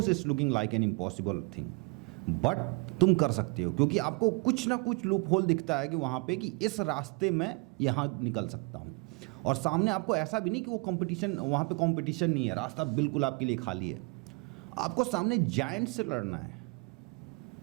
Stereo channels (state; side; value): quieter; left; 31.3 dB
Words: it's looking like an impossible thing, but तुम कर सकते हो, क्योंकि आपको कुछ ना कुछ लूप होल दिखता है कि वहाँ पे कि इस रास्ते में यहाँ निकल सकता हूँ। और सामने आपको ऐसा भी नहीं कि वो कंपटीशन, वहाँ पे कंपटीशन नहीं है, रास्ता बिल्कुल आपके लिए खाली है, आपको सामने जायंट से लड़ना है,